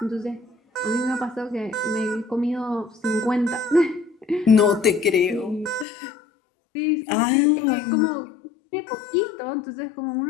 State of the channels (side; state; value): right; drops out; at 5.9 s